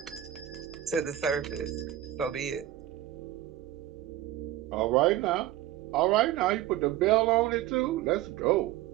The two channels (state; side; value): quieter; left; 13.4 dB